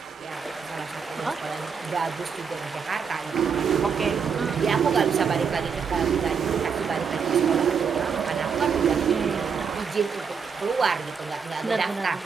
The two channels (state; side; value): quieter; left; 6.2 dB